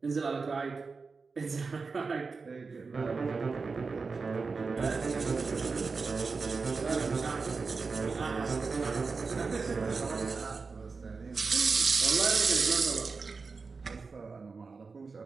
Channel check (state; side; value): quieter; left; 4.5 dB